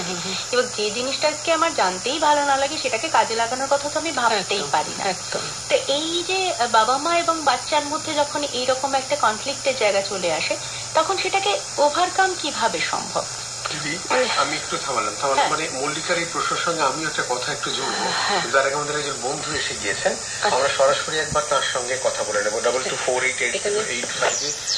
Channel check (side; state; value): right; noise; rumble, 27 dB below the sound